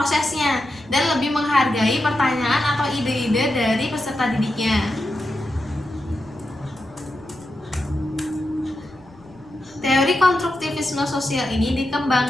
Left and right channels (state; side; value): noise; left; rumble, 26 dB below the sound